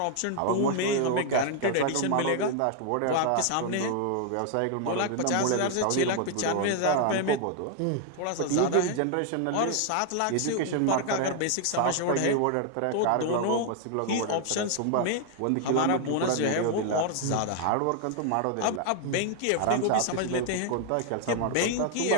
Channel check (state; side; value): different; both; correlation 0.00